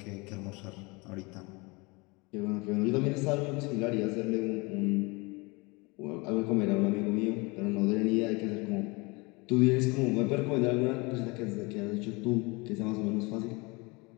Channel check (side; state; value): right; quieter; 26.6 dB